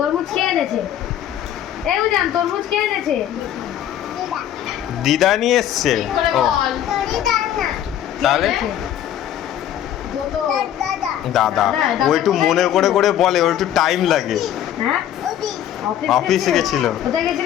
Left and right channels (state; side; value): quieter; right; 11.0 dB